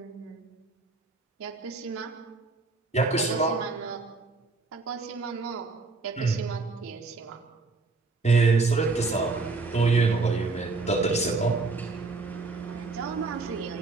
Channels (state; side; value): quieter; left; 3.8 dB